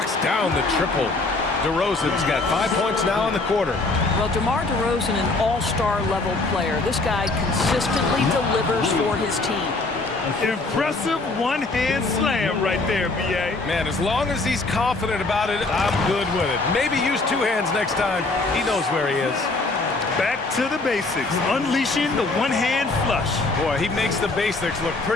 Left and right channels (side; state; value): right; quieter; 3.3 dB